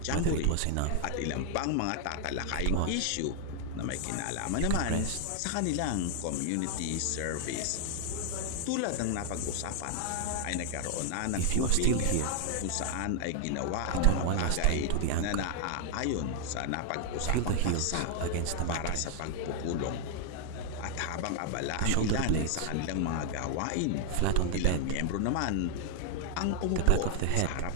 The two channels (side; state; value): both; different; correlation 0.00